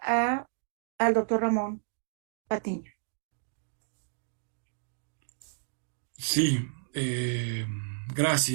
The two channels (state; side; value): silent; left; digital silence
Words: al doctor Ramón Patiño. Sí,